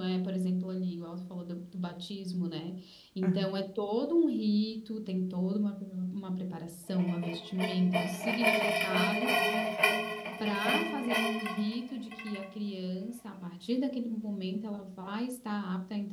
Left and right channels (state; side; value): identical; both; correlation 1.00